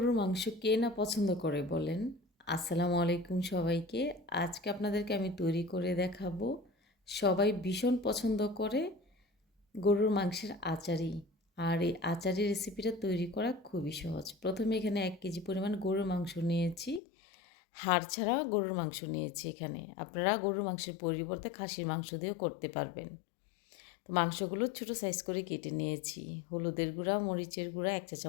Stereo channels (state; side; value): drops out; right; at 17.0 s